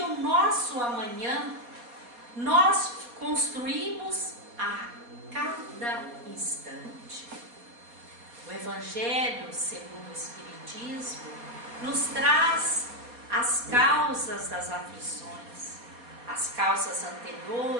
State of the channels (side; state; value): left; late; 4.2 ms